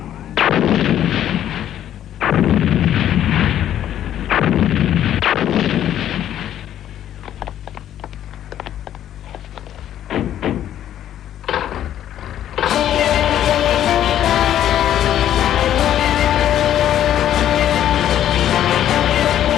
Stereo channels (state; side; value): quieter; right; 11.2 dB